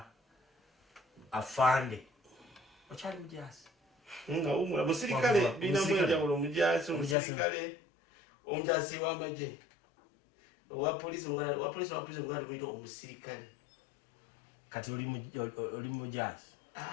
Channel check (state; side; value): drops out; right; at 7.2 s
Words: afande okyali mujaasi nga umula musirikale bina mwenjawulo mujaasi omusirikale omujaasi w'amagye wa polisi ngala tumuyita omusirikale kati oli mujaasi